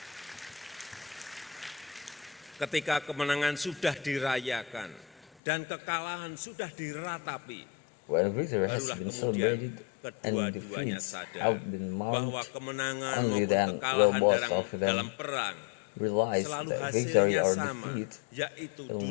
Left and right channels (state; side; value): drops out; right; at 5.2 s